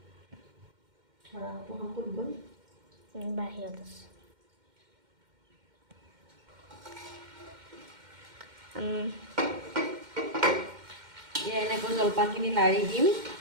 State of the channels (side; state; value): left; late; 2.1 ms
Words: বাহিৰত আছে এনেকৈ জলপানখিনি লাৰি দিম